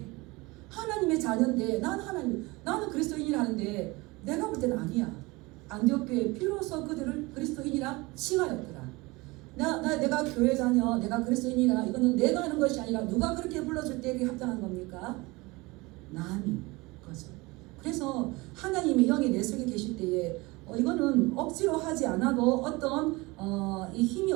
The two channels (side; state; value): left; quieter; 23.4 dB